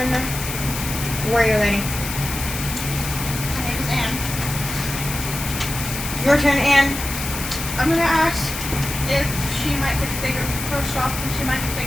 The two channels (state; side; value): noise; left; hiss, 6 dB below the sound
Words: Warrior lady. My name is Anne. Your turn, Anne. I'm gonna ask if she might could figure first off if she might could